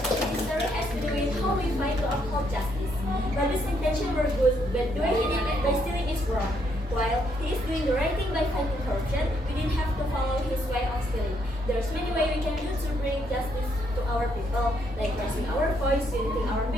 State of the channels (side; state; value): both; normal; correlation 0.73